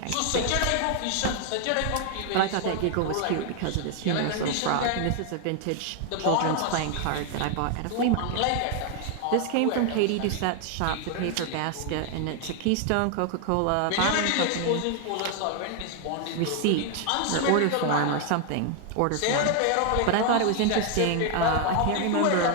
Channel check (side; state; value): both; different; correlation 0.00